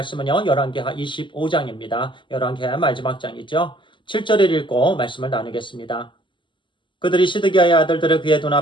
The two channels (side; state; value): right; late; 0.24 ms